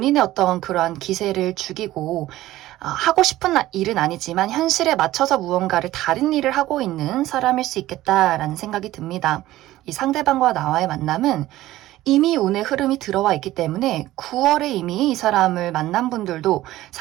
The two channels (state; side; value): quieter; left; 15.7 dB